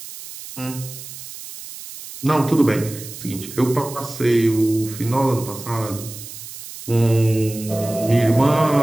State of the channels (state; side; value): noise; right; hiss, 13 dB below the sound